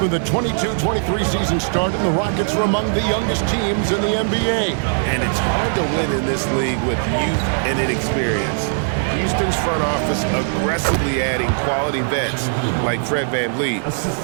when the 22-23 season started, the Rockets were among the youngest teams in the NBA. And it's hard to win in this league with youth and inexperience. Houston's front office aggressively adding quality vets like Fred VanVleet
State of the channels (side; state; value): left; silent; digital silence